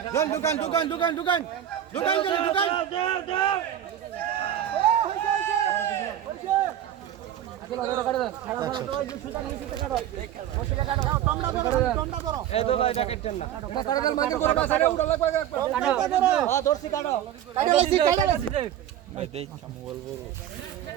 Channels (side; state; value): left; quieter; 11.0 dB